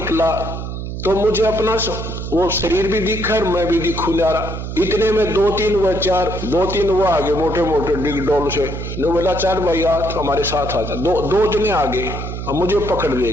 तो मुझे अपना वो शरीर भी दिखा और मैं भी दिखू जा रहा। इतने में 2-3 वो आगे मोटे मोटे डिग डोल से, ने बोला 4 भाई आज हमारे साथ आ जा। 2 जने आगे और मुझे पकड़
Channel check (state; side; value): noise; right; hum, 6 dB below the sound